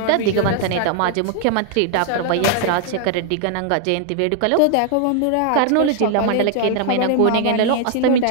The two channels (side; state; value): both; different; correlation 0.00